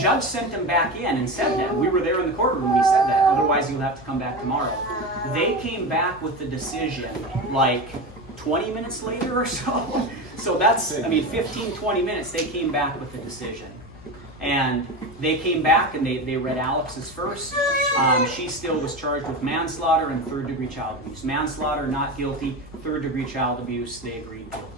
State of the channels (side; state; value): both; normal; correlation 0.23